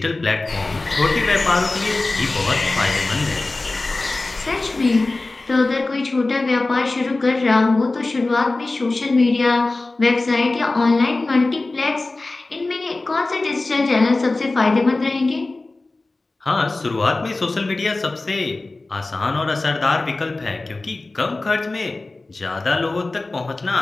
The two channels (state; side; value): quieter; right; 3.2 dB